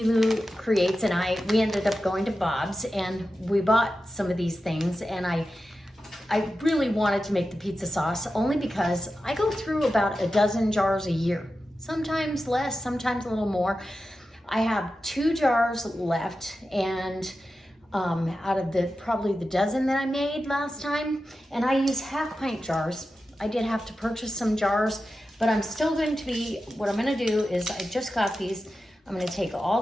Creates and we ended up going to Bob's and we bought some of these things, and I really wanted to make the pizza sauce only because I go through about a dozen jars a year, sometimes less, sometimes a little more. I have 2 jars left, and out of probably the dozen that I made last time, and I use half-pint jars. I did have to purchase some jars, but I'm still going to be, what I'm going to do is I just got these. I'm going to take all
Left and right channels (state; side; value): normal; both; correlation 0.92